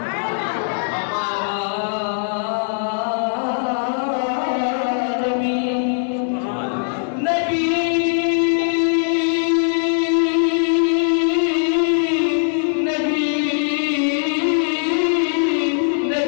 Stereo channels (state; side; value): silent; right; 66 dB below the other